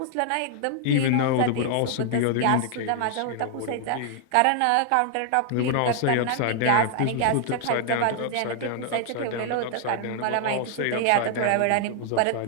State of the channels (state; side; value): different; both; correlation 0.00